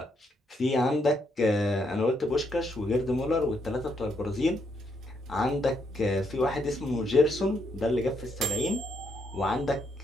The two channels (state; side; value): normal; both; correlation 0.76